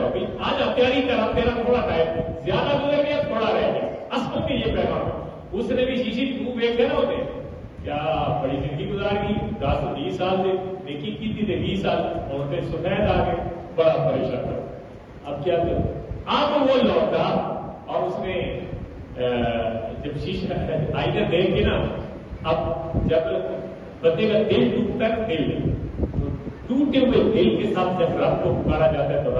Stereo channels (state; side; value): identical; both; correlation 1.00